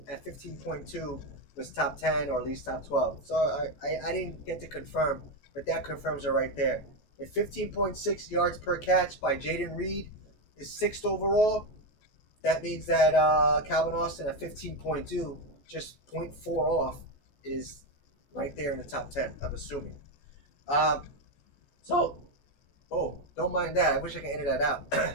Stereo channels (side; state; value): right; late; 14 ms